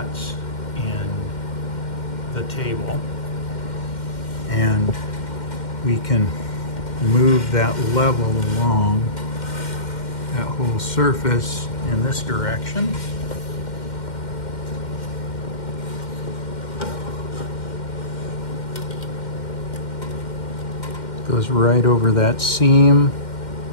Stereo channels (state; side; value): late; right; 2.1 ms